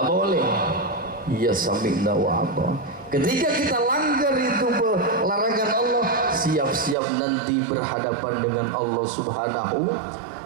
boleh. Ya sami'na wa ata'na. Ketika kita langgar itu larangan Allah, siap-siap nanti berhadapan dengan Allah Subhanahu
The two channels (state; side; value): drops out; left; at 7.0 s